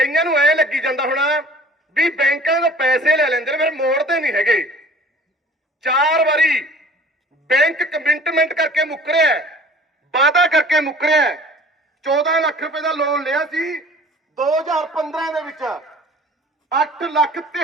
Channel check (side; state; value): both; normal; correlation 0.47